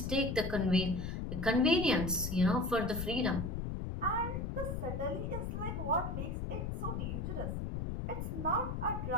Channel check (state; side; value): noise; left; rumble, 3 dB below the sound